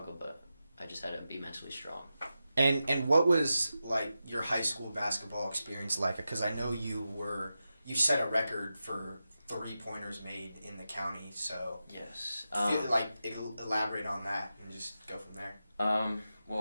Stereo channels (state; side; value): inverted; both; correlation -0.91